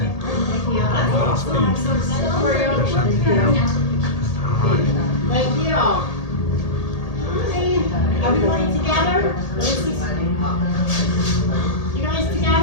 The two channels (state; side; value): late; right; 1.8 ms